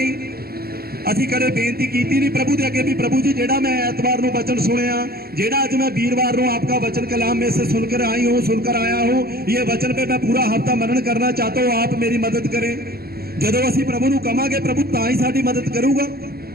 असीं कदे बेनती कीती नहीं प्रभु दे अगे भी प्रभु जी जेड़ा मैं ऐतवार नूं वचन सुनिया, जेड़ा अज मैं वीरवार नूं आपका वचन कलाम में से सुनकर आई हूँ, सुनकर आया हूँ, ये वचन पे मैं पूरा हफ्ता मनन करना चाहता हूँ, आप मेरी मदद करें। जदों असीं प्रभु नूं कहांगे प्रभु तां ही साडी मदद करूगा।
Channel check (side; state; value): left; late; 0.45 ms